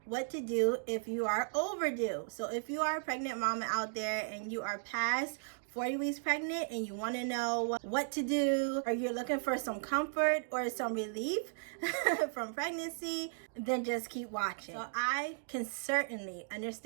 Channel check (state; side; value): silent; left; digital silence